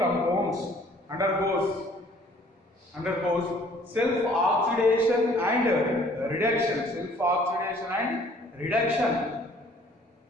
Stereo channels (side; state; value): both; normal; correlation 0.57